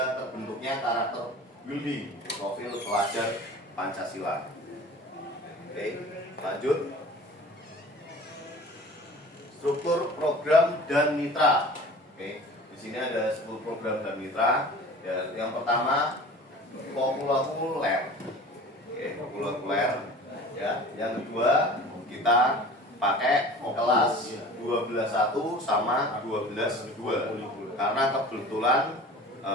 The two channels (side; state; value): both; normal; correlation 0.41